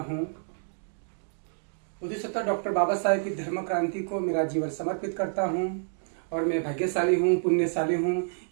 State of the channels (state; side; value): silent; left; digital silence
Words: हूँ। बुद्धिसत्ता डॉक्टर बाबा साहेब की धर्म क्रांति को मेरा जीवन समर्पित करता हूँ और मैं भाग्यशाली हूँ, पुण्यशाली हूँ